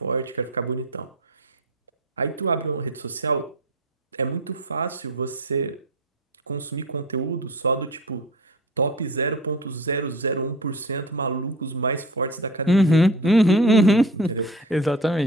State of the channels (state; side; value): normal; both; correlation 0.35